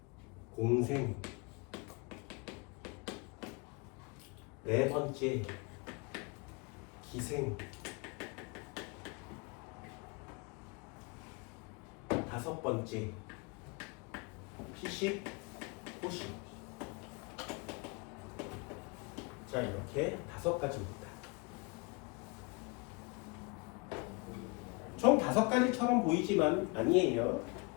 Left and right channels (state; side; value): quieter; right; 29.6 dB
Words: 공생. 네 번째, 기생. 다섯 번째, 피식, 호식. 자, 이렇게 5가지입니다. 총 5가지처럼 보이지만 아니에요.